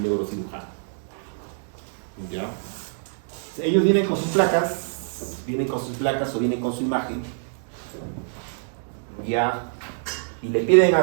neurocirujano. ¿Ya? Ellos vienen con sus placas o vienen con su imagen, ¿ya? Y le piden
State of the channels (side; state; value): left; silent; digital silence